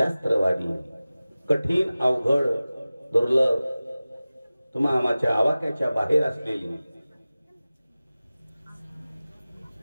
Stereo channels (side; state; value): both; inverted; correlation -0.97